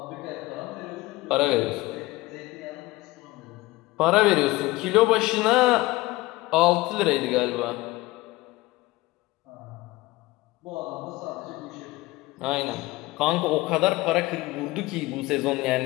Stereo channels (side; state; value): right; quieter; 20.0 dB